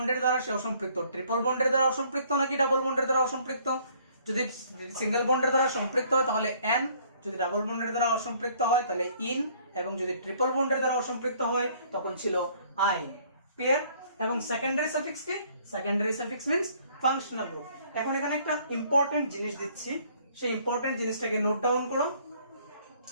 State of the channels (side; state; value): both; inverted; correlation -0.60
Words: দ্বারা সে অসম্পৃক্ত? ট্রিপল বন্ডের দ্বারা অসম্পৃক্ত নাকি ডাবল বন্ডের দ্বারা অসম্পৃক্ত? যদি সিঙ্গেল বন্ডের দ্বারা সম্পৃক্ত হয় তাহলে এন, যদি ডাবল বন্ডের দ্বারা অসম্পৃক্ত হয় তাহলে ইন, এবং যদি ট্রিপল বন্ডের দ্বারা অসম্পৃক্ত হয় তখন ছিল আই। ক্লিয়ার? এবং সেকেন্ডারি সাফিক্স কি? Secondary suffix means functional group. এখন এখানে একটা ইম্পর্টেন্ট জিনিস দিচ্ছি, সেই ইম্পর্টেন্ট জিনিসটাকে নোট ডাউন করো।